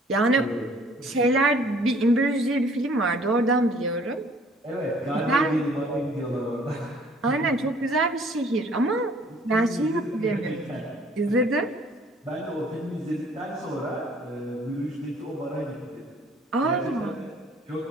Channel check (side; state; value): both; normal; correlation 0.56